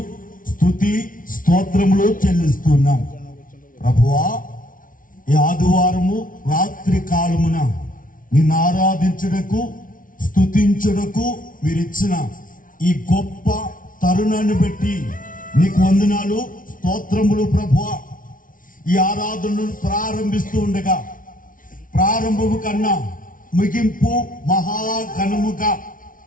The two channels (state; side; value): late; right; 0.39 ms